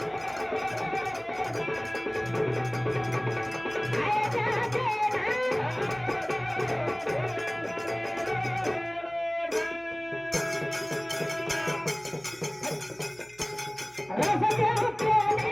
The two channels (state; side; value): noise; left; hum, 29 dB below the sound